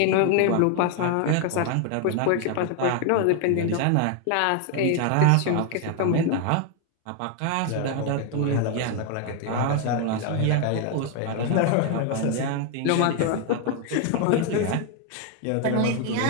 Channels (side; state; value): both; different; correlation 0.01